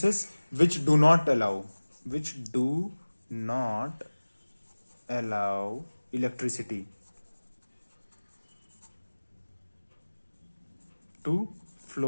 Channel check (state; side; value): inverted; both; correlation -1.00